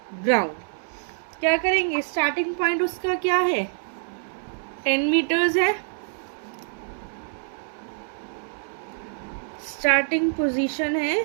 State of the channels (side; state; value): left; silent; digital silence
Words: ग्राउंड। क्या करेंगे? स्टार्टिंग पॉइंट उसका क्या है? 10 मीटर्स है, स्टार्टिंग पोजीशन है